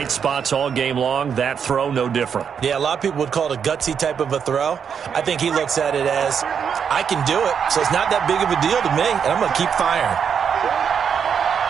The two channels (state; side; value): quieter; left; 7.2 dB